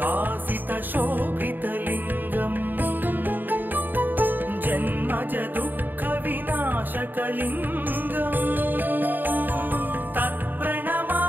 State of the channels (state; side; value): late; left; 0.090 ms